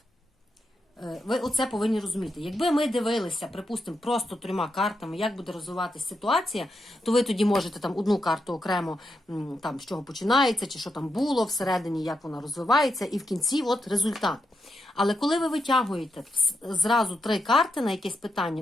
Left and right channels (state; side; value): normal; both; correlation 0.84